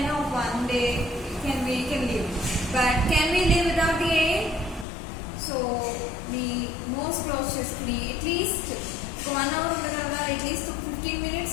one day we can live, but can we live without the air? So మీ nose close చేసుకుని అట్లీస్ట్ ఒక 1 hour ఉండగలరా? At least 15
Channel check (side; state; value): right; drops out; at 4.9 s